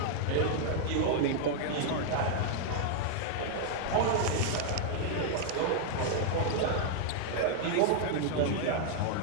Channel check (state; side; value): different; both; correlation -0.01